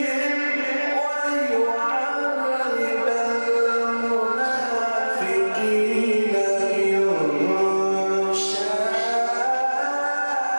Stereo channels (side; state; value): both; inverted; correlation -1.00